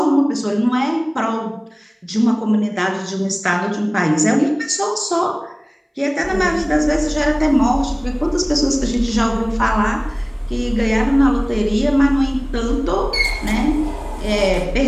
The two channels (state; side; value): identical; both; correlation 1.00